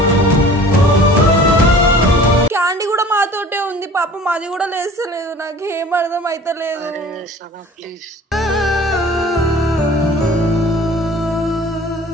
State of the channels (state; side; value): normal; both; correlation 0.45